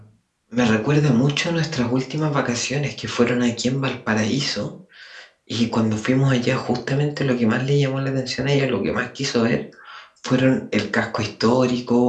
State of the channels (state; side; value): identical; both; correlation 1.00